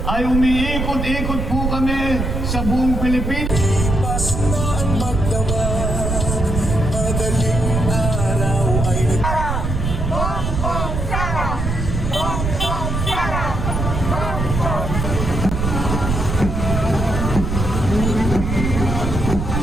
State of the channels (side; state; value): right; noise; rumble, 2 dB below the sound